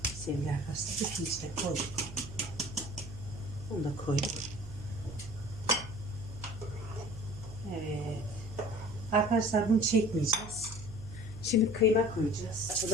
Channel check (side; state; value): right; noise; hum, 13 dB below the sound